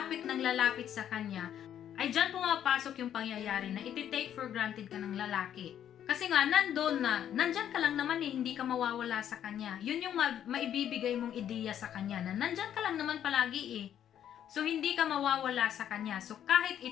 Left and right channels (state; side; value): quieter; right; 10.1 dB